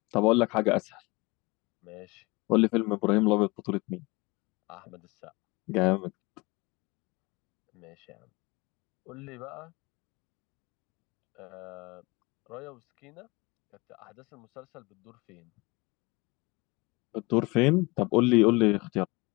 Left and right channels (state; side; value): quieter; right; 24.7 dB